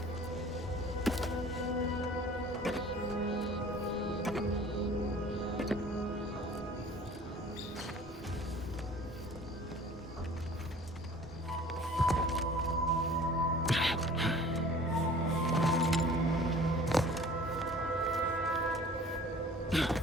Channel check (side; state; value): both; normal; correlation 0.47